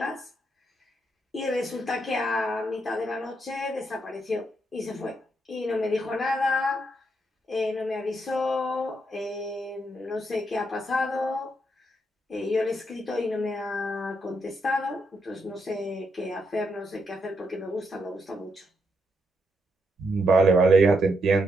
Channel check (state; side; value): normal; both; correlation 0.79